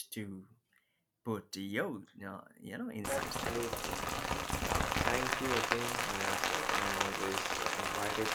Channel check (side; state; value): both; identical; correlation 1.00